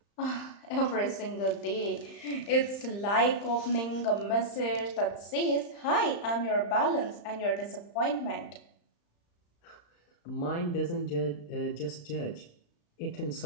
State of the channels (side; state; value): right; late; 35 ms